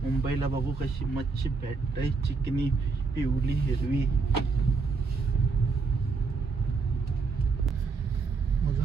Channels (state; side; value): quieter; left; 4.5 dB